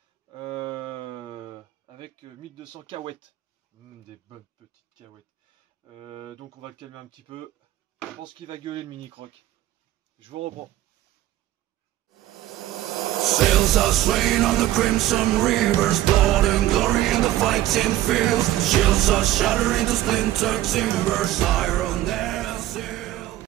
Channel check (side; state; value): left; quieter; 14.5 dB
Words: avec 1200 cahuètes. Des bonnes petites cahuètes. Donc on va le calmer un petit peu. Je pense qu'il va gueuler le mini croc. Je vous reprends. Sails are swaying on the crimson rivers, blood and glory in the fighting fields. Shields are shattering to splintered timbers, iron their seal.